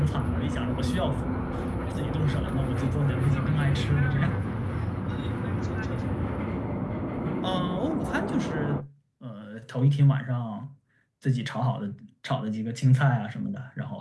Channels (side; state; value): both; identical; correlation 1.00